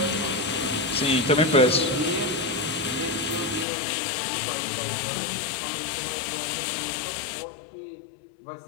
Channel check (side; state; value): right; drops out; at 3.7 s